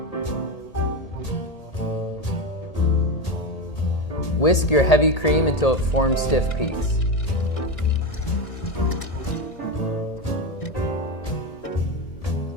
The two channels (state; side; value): late; right; 1.8 ms